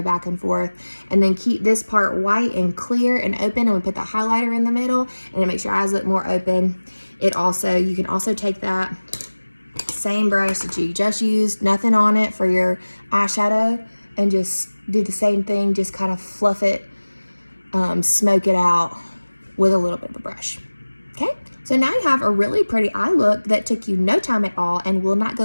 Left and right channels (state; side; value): inverted; both; correlation -1.00